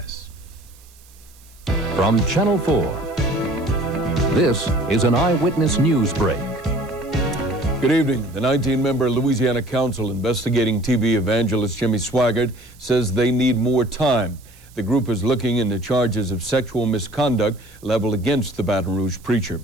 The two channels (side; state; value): right; noise; hiss, 26 dB below the sound